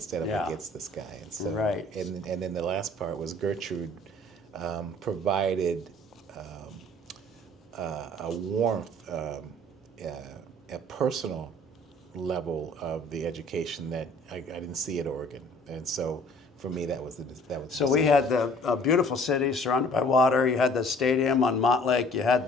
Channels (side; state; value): both; normal; correlation 0.53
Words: of against this guy. And so, and then the last part was Gertrude provided a warmth, a personal level of the education that I didn't see at Oregon. And so for me, that was. So we had the beautiful city surrounded by water. You had the stadium on Mott Lake. You had